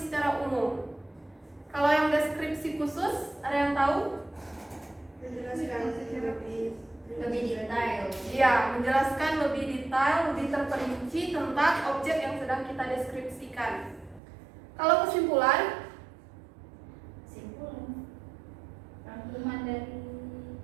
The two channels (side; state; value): left; drops out; at 14.2 s